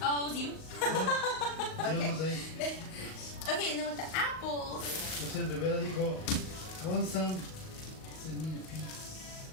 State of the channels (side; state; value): right; late; 38 ms